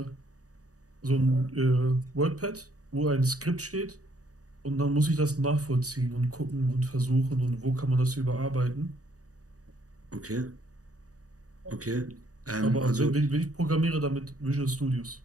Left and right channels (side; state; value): left; late; 0.66 ms